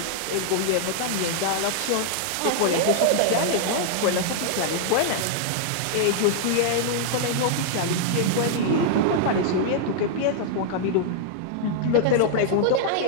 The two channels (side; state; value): both; different; correlation -0.01